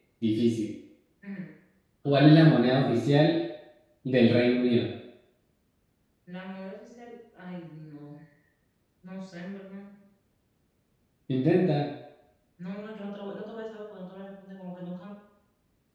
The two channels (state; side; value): identical; both; correlation 1.00